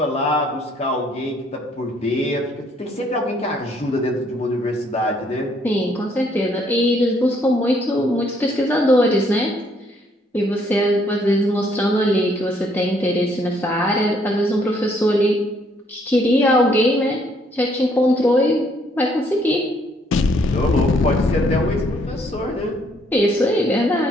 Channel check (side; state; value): both; normal; correlation 0.67